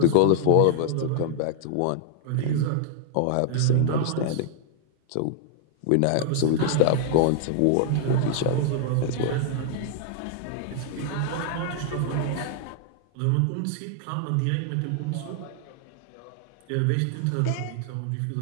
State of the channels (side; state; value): both; different; correlation -0.01